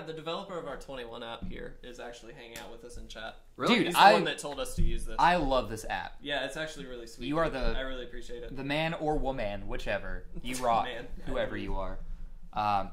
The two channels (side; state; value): both; identical; correlation 1.00